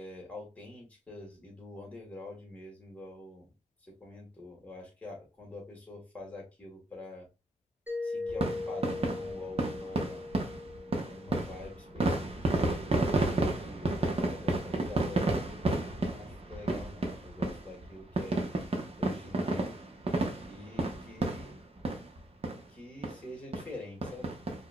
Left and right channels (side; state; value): both; normal; correlation 0.75